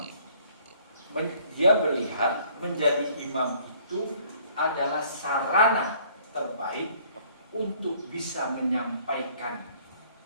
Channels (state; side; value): inverted; both; correlation -0.59